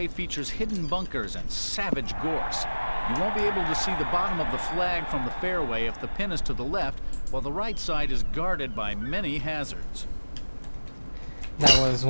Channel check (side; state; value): both; inverted; correlation -1.00